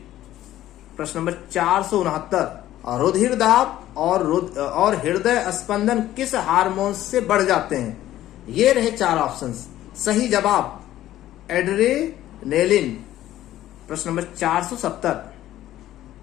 प्रश्न नंबर 469, रुधिर दाब और हृदय स्पंदन किस हार्मोन से बढ़ जाते हैं? ये रहे 4 ऑप्शन। सही जवाब एड्रेनालिन। प्रश्न नंबर 470,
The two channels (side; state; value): right; quieter; 13.7 dB